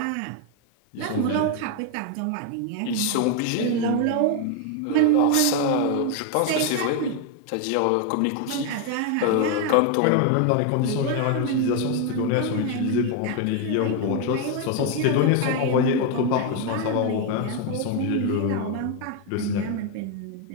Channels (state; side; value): different; both; correlation 0.01